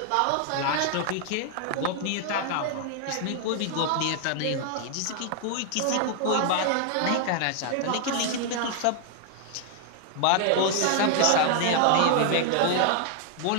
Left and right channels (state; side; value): different; both; correlation 0.00